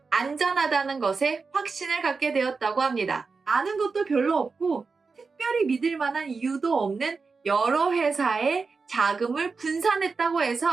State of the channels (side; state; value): left; quieter; 4.6 dB